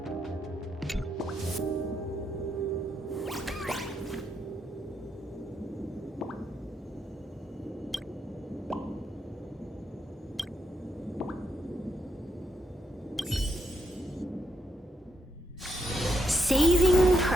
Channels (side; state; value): both; normal; correlation 0.80